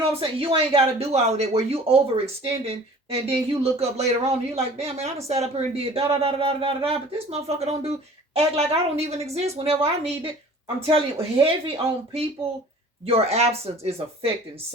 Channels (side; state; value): both; normal; correlation 0.47